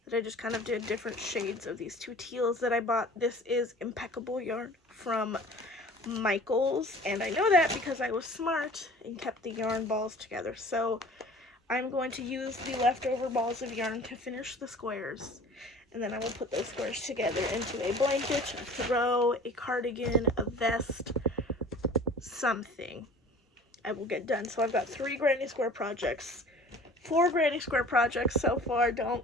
that I just kind of did different shades of these 2 teals that I bought. This is impeccable yarn from Michaels, and I know that because I was smart and kept the yarn balls together. So I'm going to use the leftover balls of yarn to finish the squares, and then I will put those squares together into a blanket, a throw, a cardigan, a vest, something I will get done. So I've got 3 granny square projects, 4 granny square projects so far. Don't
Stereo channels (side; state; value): both; normal; correlation 0.45